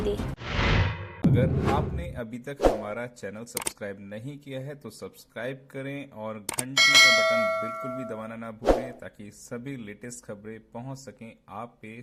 अगर आपने अभी तक हमारा चैनल सब्सक्राइब नहीं किया है तो सब्सक्राइब करें और घंटी का बटन बिल्कुल भी दबाना ना भूलें, ताकि सभी लेटेस्ट खबरें पहुंच सकें आप पे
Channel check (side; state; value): both; identical; correlation 1.00